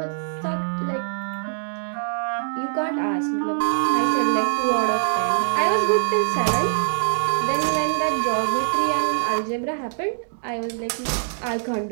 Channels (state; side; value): silent; left; digital silence